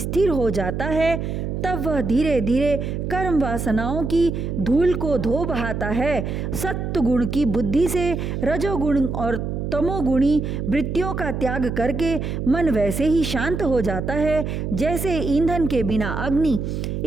हो जाता है, तब वह धीरे धीरे कर्म वासनाओं की धूल को धो बहाता है। सत्व गुण की बुद्धि से रजोगुण और तमोगुणी वृत्तियों का त्याग करके मन वैसे ही शांत हो जाता है जैसे ईंधन के बिना अग्नि।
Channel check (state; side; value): noise; right; hum, 3 dB below the sound